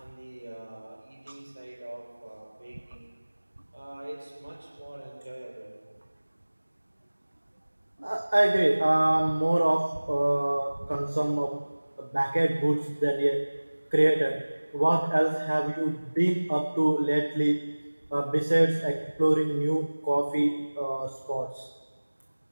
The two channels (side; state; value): both; inverted; correlation -1.00